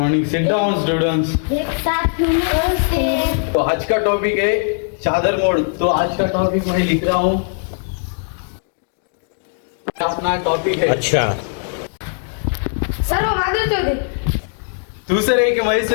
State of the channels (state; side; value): silent; right; 64 dB below the other